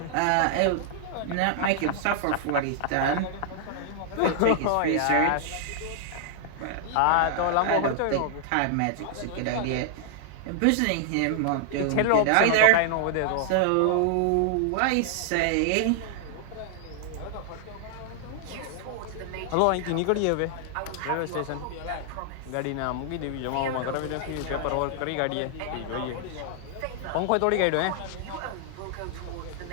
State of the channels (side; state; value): both; different; correlation -0.01